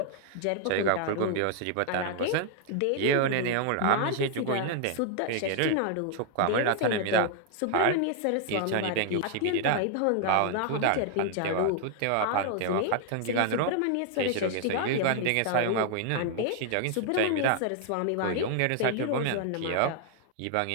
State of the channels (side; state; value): both; different; correlation 0.00